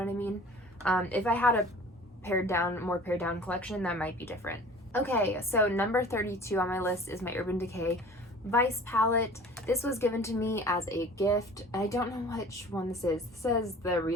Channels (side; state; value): both; normal; correlation 0.45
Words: I mean? If I had a more pared down collection, that might be different. Okay, so number 32 on my list is my Urban Decay Vice palette. This was given to me as a gift. I don't know which one this is. This says the